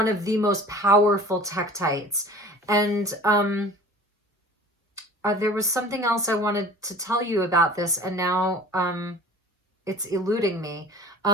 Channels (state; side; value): normal; both; correlation 0.43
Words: of the most powerful tektites. And there was something else I wanted to tell you about this, and now it's eluding me.